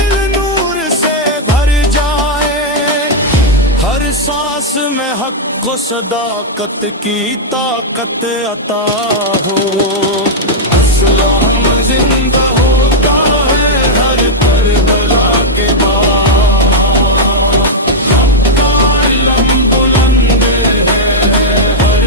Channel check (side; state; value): both; normal; correlation -0.04